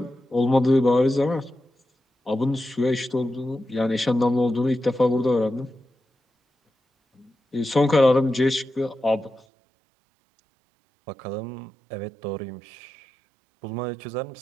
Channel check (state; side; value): drops out; left; at 9.4 s